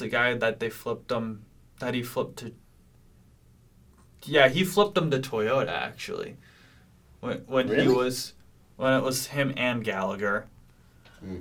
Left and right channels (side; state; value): both; identical; correlation 1.00